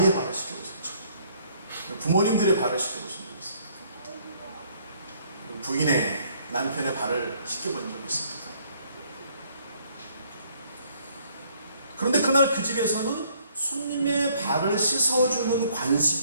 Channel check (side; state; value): both; inverted; correlation -0.64